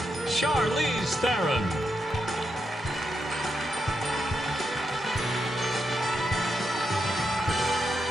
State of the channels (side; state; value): both; normal; correlation 0.84